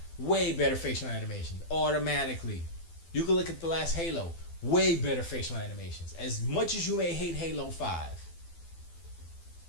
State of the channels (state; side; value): late; right; 12 ms